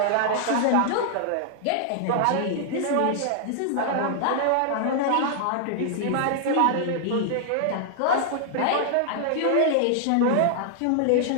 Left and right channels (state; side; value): different; both; correlation -0.01